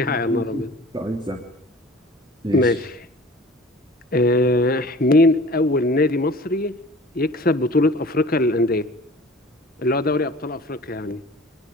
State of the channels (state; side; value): normal; both; correlation 0.45